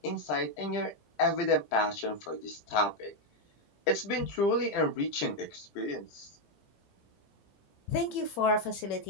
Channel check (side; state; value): right; late; 18 ms